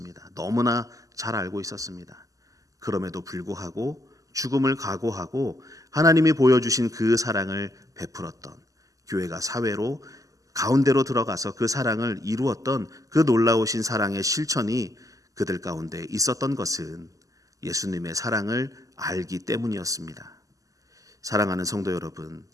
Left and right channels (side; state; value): left; late; 0.16 ms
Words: 너무나 잘 알고 있었습니다. 그럼에도 불구하고 죽음을 각오하고 하나님이 보여주신 그 사랑을 베풀었던, 교회가 사회로 가운데로 들어가서 그 사랑을 이루었던 그 놀라우신 사랑의 실천이 그들 가운데 있었던 것은 예수님의 사랑을 알기 때문이었습니다. 사랑하는 성도 여러분,